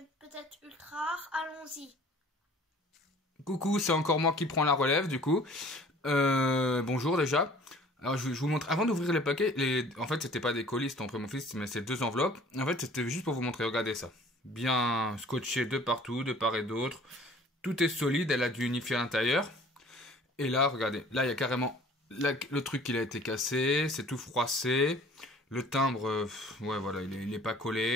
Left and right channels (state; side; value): normal; both; correlation 0.51